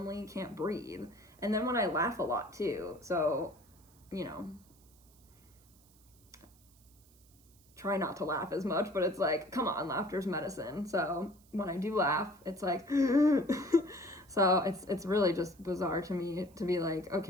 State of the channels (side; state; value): right; noise; hiss, 29 dB below the sound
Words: can't breathe. And then when I laugh a lot too. So, you know, try not to laugh as much, but it's like, come on, laughter's medicine. So when I do laugh, it's like, so it's really just bizarre to me to be like,